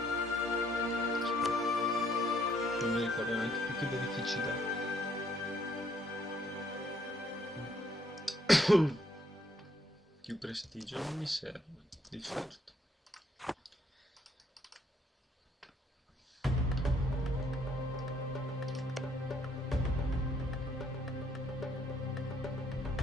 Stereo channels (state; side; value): normal; both; correlation 0.68